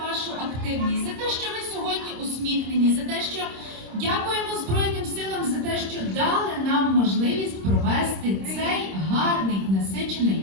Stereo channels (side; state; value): left; late; 26 ms